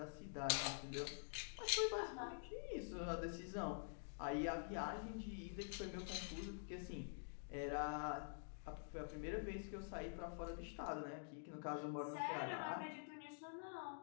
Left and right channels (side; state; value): right; silent; digital silence